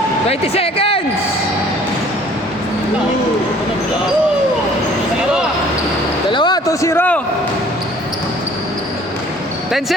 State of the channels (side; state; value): both; normal; correlation 0.54